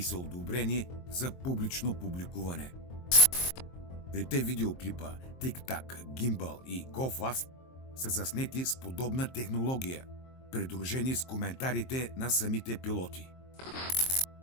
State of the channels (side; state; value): right; late; 23 ms